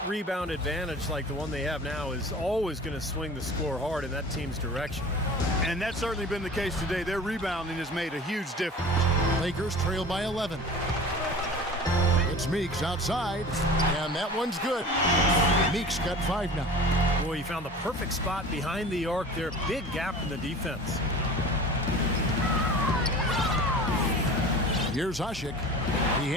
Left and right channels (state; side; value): normal; both; correlation 0.39